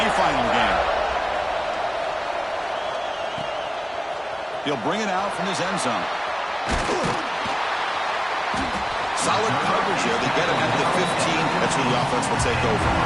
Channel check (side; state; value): both; identical; correlation 1.00